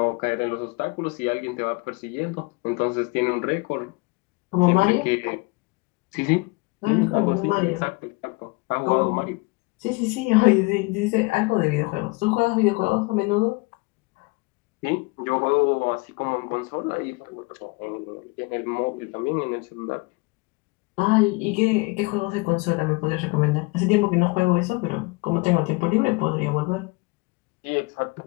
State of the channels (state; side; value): quieter; right; 26.7 dB